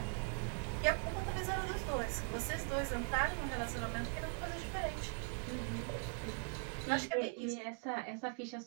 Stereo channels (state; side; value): quieter; left; 38.4 dB